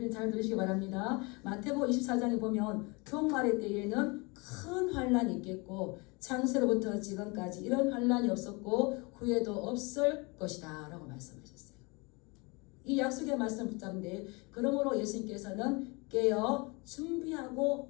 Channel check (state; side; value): quieter; right; 28.0 dB